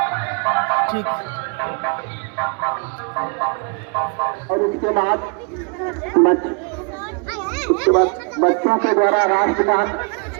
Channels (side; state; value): left; quieter; 36.7 dB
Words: ठीक। और उसके बाद बच्चों के द्वारा राष्ट्रगान